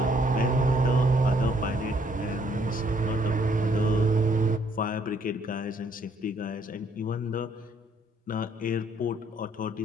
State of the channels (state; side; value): normal; both; correlation 0.67